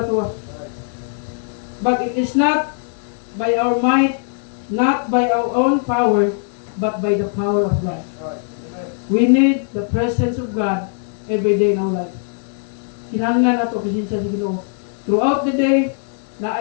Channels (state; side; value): silent; right; 66 dB below the other